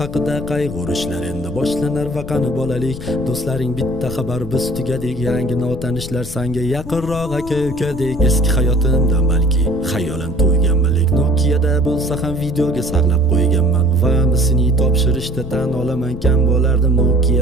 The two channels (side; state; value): left; noise; rumble, 13 dB below the sound